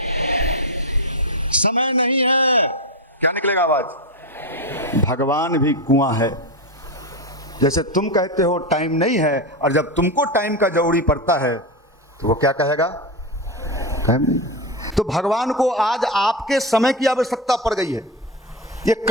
समय नहीं है, क्या निकलेगा आवाज? भगवान भी कुआं है। जैसे तुम कहते हो टाइम नहीं है, और जब तुमको टाइम का जरूरी पड़ता है तो वो क्या कहेगा? टाइम नहीं। तो भगवान को आज आपके समय की आवश्यकता पड़ गई है। ये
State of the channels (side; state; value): both; normal; correlation 0.13